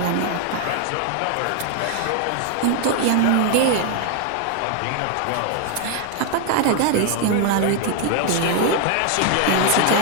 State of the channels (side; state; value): both; different; correlation 0.00